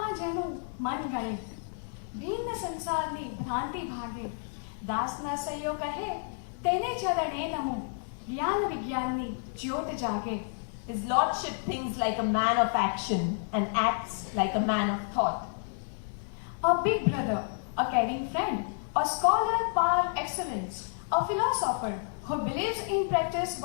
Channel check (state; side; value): silent; right; digital silence